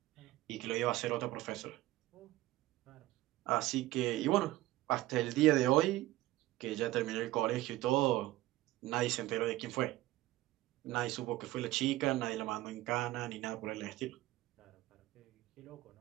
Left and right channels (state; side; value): quieter; left; 16.8 dB